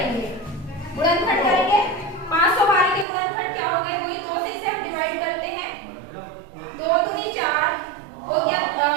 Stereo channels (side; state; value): left; drops out; at 3.1 s